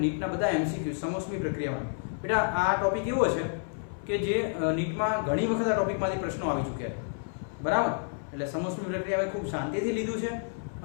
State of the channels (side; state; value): right; silent; 58 dB below the other